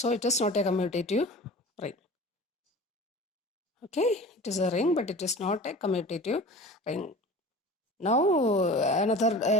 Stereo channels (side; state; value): both; normal; correlation 0.38